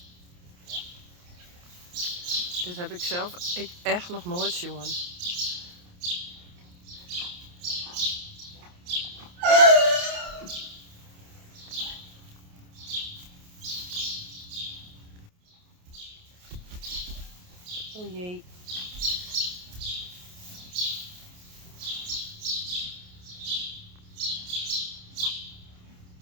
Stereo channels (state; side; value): late; left; 28 ms